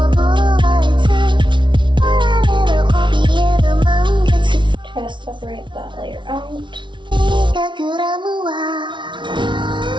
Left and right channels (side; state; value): left; late; 0.24 ms